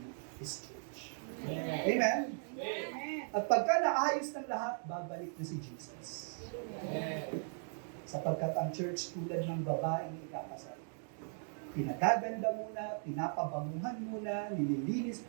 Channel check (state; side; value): silent; left; 53 dB below the other